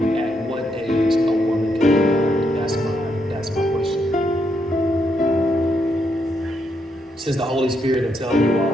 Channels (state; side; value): normal; both; correlation 0.78